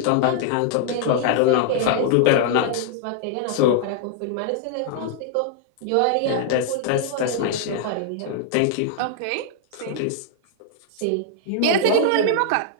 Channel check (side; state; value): both; different; correlation 0.00